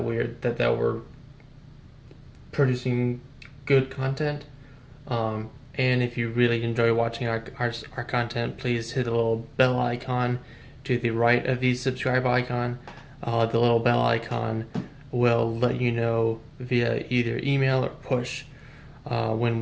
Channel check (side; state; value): both; identical; correlation 1.00